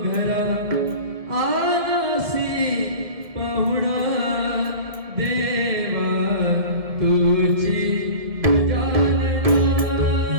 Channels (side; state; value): left; late; 1.7 ms